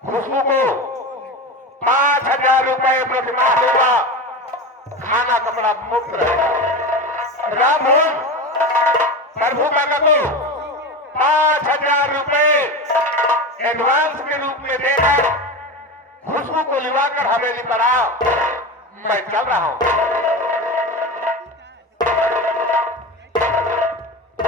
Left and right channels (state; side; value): normal; both; correlation 0.24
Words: खुशबू को 5,000 रुपए प्रतिमाह देगा, खाना कपड़ा मुफ्त रहेगा। राम भोज प्रभु काका को 5,000 रुपए एडवांस के रूप में देकर खुशबू को लिवाकर हवेली पर आओ, मैं चल रहा हूं।